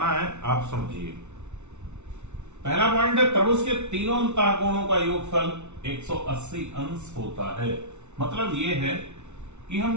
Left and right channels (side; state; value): left; late; 0.82 ms